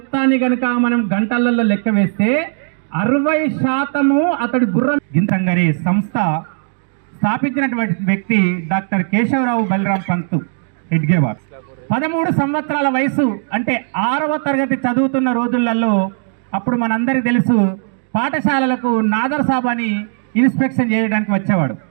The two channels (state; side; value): silent; left; digital silence